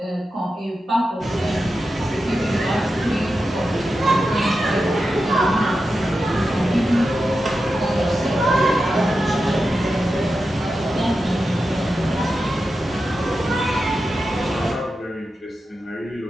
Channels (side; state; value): both; normal; correlation 0.90